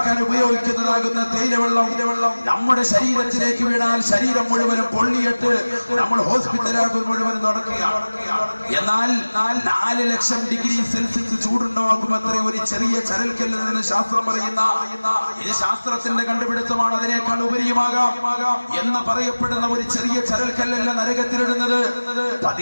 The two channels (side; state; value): both; inverted; correlation -1.00